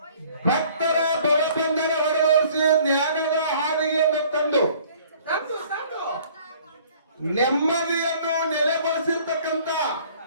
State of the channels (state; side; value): inverted; both; correlation -0.54